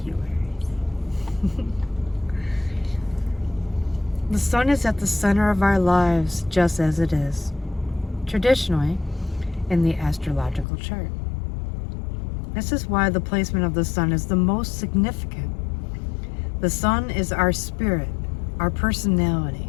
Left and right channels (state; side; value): drops out; right; at 10.7 s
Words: you, Aries. The sun is at the center of our lives, just as it is traditionally in the astrological chart. This is why the placement of the sun is the most significant. The sun is our spirit, our personality.